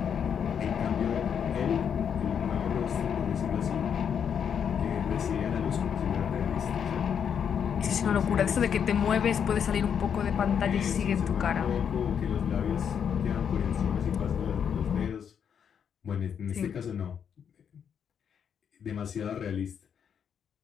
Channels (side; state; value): right; quieter; 7.8 dB